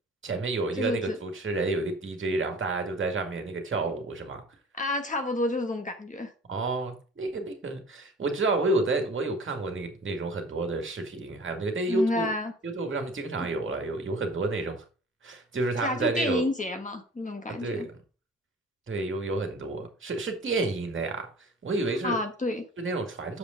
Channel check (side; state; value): both; normal; correlation 0.44